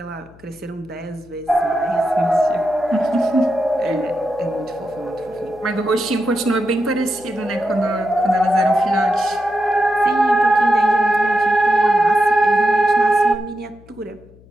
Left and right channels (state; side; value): noise; left; hum, 25 dB below the sound